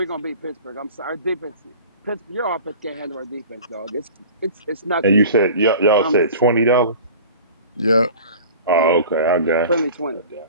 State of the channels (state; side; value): inverted; both; correlation -0.41